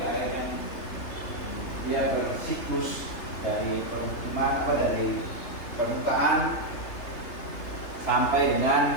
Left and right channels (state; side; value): late; right; 3.3 ms